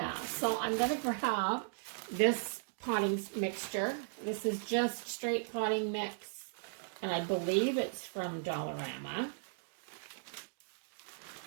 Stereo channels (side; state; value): left; silent; digital silence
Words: so I'm going to grab this potting mixture. This is just straight potting mix, and I believe it's from Dollarama.